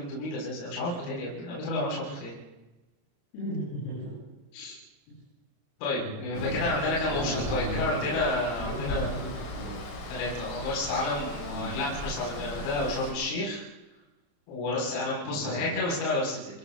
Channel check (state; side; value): late; right; 35 ms